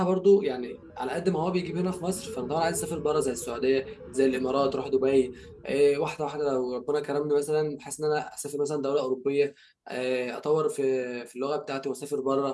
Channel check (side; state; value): both; identical; correlation 1.00